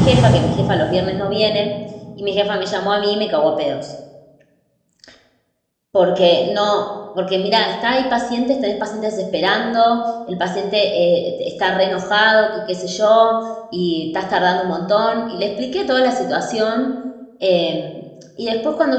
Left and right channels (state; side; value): identical; both; correlation 1.00